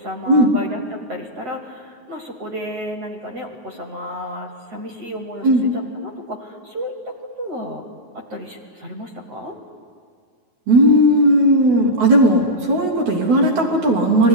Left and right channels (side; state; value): left; late; 9.3 ms